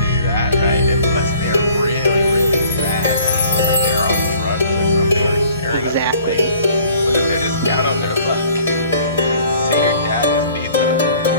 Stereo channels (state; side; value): inverted; both; correlation -0.54